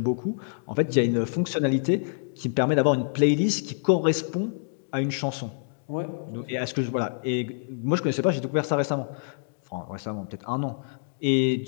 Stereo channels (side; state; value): right; silent; digital silence